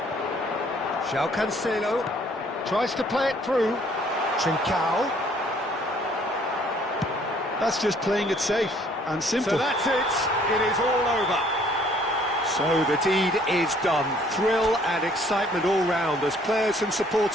João Cancelo tries to play it through. Trincao. That's just playing it safe and simple. So that's it. It is all over. So the deed is done. Thrill and excitement all round as players and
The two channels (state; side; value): normal; both; correlation 0.60